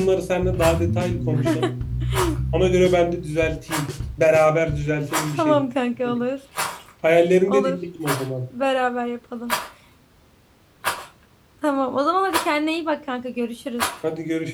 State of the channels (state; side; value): identical; both; correlation 1.00